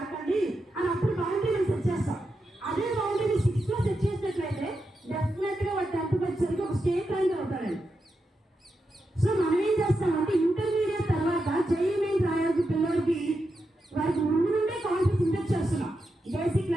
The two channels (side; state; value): both; normal; correlation 0.87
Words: అని అప్పుడు బౌండరీ సెట్ చేస్తాం. అదే బౌండరీ 6th లో సెట్ చేసినట్లయితే డెఫినెట్ గా వాడు 10th వచ్చేసరికి ఒక స్టేట్ ర్యాంక్ అవుతాడండి. సో మనం ఏం చేస్తామంటే ఇంటర్మీడియట్ తర్వాత జేఈ మెయిన్ రాయాల్సిన పిల్లలకి వారికి ముందు నుండే కాన్ఫిడెన్స్ ఇంజెక్ట్ చేస్తున్నాం బేసిక్